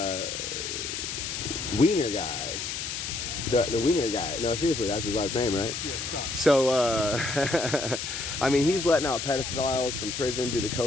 Wiener guy. The Wiener guy. No, seriously, that's his last name, right? Yeah, Scott. So, I mean, he's letting out pedophiles from prison due to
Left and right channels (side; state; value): left; noise; hiss, 5 dB below the sound